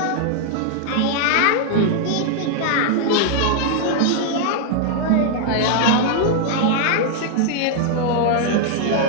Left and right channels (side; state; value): both; different; correlation 0.00